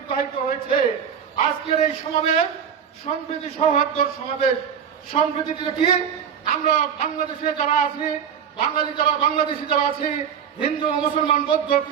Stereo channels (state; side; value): quieter; left; 7.8 dB